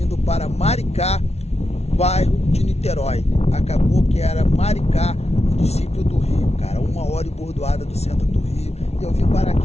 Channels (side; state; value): right; late; 0.31 ms